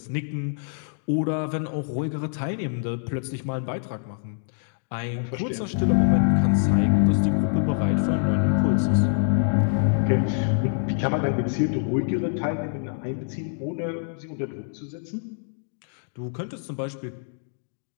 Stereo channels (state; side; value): silent; right; digital silence